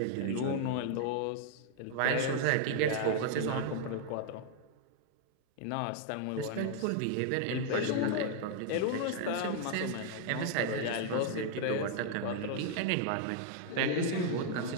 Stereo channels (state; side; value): different; both; correlation 0.00